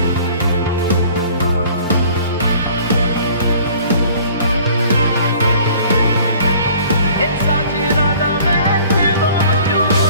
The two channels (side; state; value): both; inverted; correlation -0.51